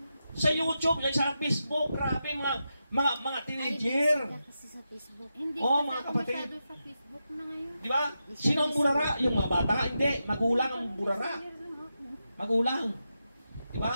Sa YouTube, sa Facebook, grabe mga teenager. Ay, kasi sa Facebook. Hindi Oh, kasi mga ako kapatid. masyado sa Facebook na ngayon. Di ba? Sino ang burara? Yung mga bata? Hindi. Magulang ang burara. Magulang. Di ba?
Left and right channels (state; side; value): inverted; both; correlation -0.88